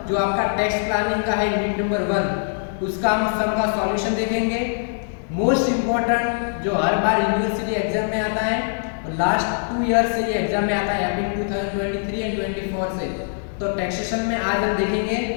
जो आपका टैक्स प्लानिंग का है। यूनिट नंबर 1 उसका हम सम का सॉल्यूशन देखेंगे। मोस्ट इम्पोर्टेंट जो हर बार यूनिवर्सिटी एग्जाम में आता है और लास्ट 2 ईयर से ये एग्जाम में आता है, अभी 2023 एंड 24 से। तो टैक्सेशन में आज हम देखेंगे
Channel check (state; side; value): silent; right; digital silence